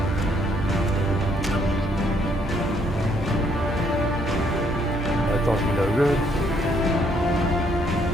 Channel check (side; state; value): both; normal; correlation 0.69